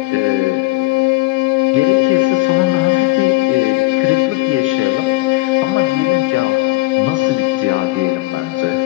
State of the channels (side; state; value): right; quieter; 21.2 dB